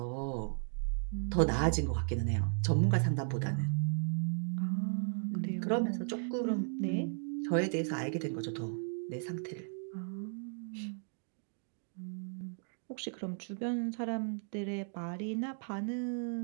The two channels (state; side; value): silent; left; 54 dB below the other